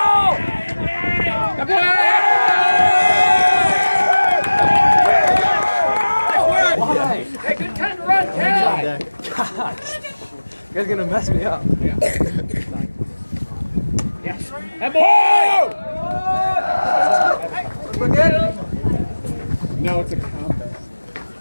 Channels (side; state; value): both; inverted; correlation -1.00